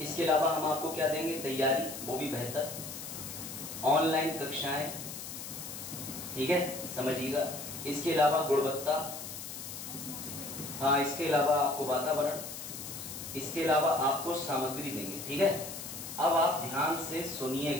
इसके अलावा हम आपको क्या देंगे, तैयारी, वो भी बेहतर, ऑनलाइन कक्षाएं, ठीक है, समझिएगा। इसके अलावा गुणवत्ता, हाँ, इसके अलावा आपको वातावरण, इसके अलावा आपको सामग्री देंगे, ठीक है। अब आप ध्यान से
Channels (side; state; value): left; noise; hiss, 9 dB below the sound